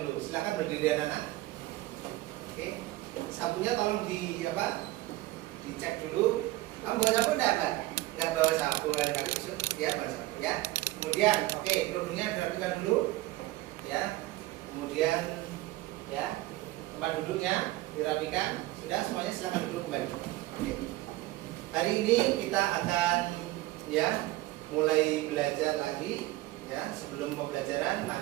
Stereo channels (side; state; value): left; quieter; 17.9 dB